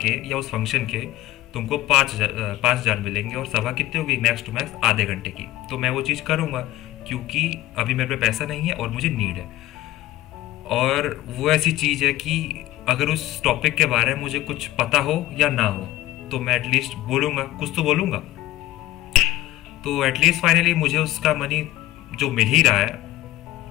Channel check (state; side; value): quieter; right; 15.7 dB